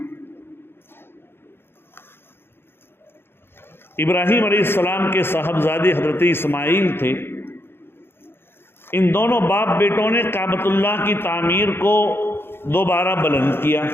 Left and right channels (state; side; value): late; right; 0.11 ms